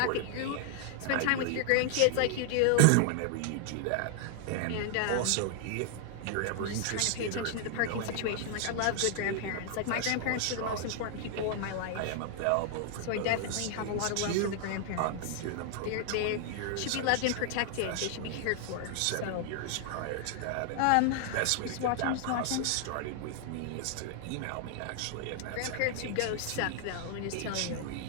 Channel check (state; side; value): different; both; correlation 0.00